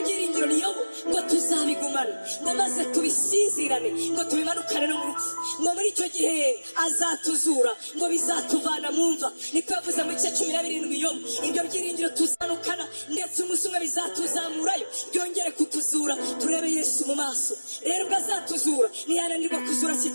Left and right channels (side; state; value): both; inverted; correlation -1.00